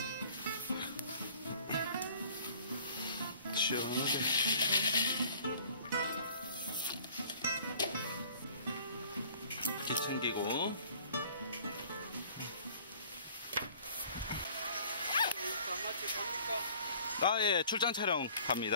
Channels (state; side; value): inverted; both; correlation -0.52